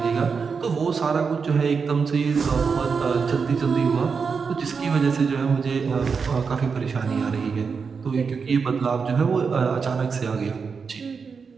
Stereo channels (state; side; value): quieter; left; 5.5 dB